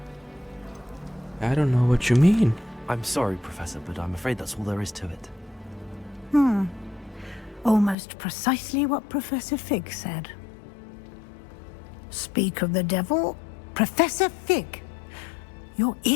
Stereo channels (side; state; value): right; drops out; at 8.0 s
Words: I don't know what you mean. I'm sorry, Professor, but I'm afraid that's all there is to it. Almost precisely what Professor Fig said. Speak of the devil, Professor Fig. Your